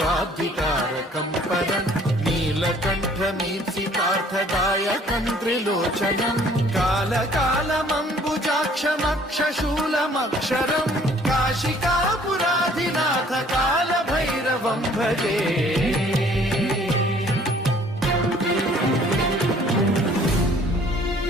परं नीलकण्ठमीप्सितार्थदायकं त्रिलोचनं कालकालमम्बुजाक्षमक्षशूलमक्षरं काशिकापुराधिनाथ कालभैरवं भजे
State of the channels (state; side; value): normal; both; correlation 0.57